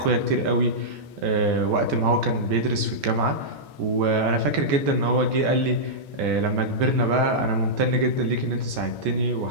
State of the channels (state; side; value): late; left; 14 ms